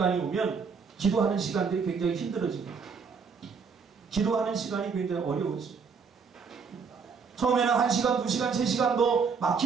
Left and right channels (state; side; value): quieter; left; 5.6 dB